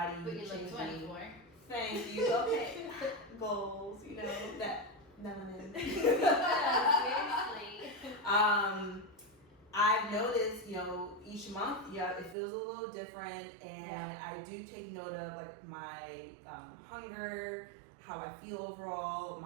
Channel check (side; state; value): left; drops out; at 12.4 s